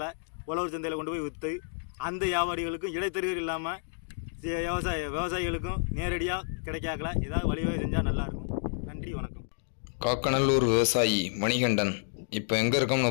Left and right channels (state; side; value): silent; right; digital silence